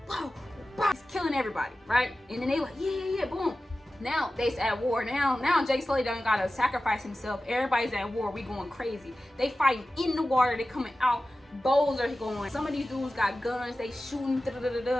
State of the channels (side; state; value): both; normal; correlation 0.95